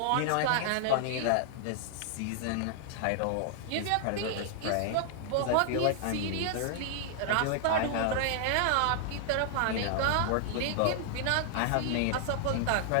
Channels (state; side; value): different; both; correlation 0.00